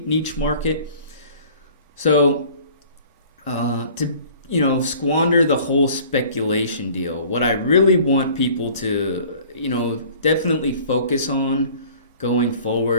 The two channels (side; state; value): both; inverted; correlation -0.50